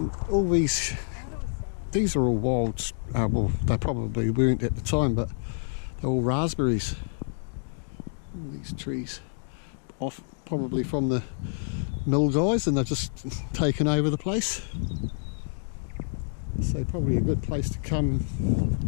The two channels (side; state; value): right; silent; digital silence